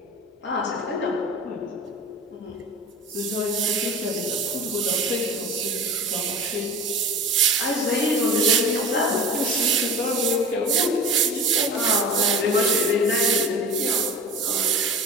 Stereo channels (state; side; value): normal; both; correlation 0.36